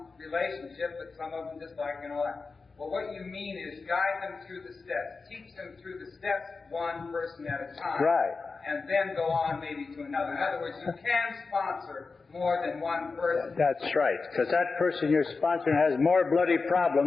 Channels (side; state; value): right; quieter; 4.3 dB